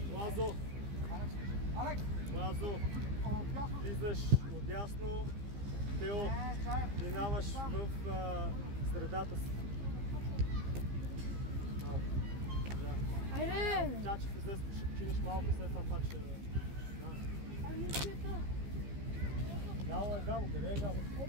Лазо, влизаш отясно. Тео, минаваш в средата си. Айде! Чачев излез, ще починиш малко, след това пак ще... Гало, къде е Гало?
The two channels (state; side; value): late; left; 15 ms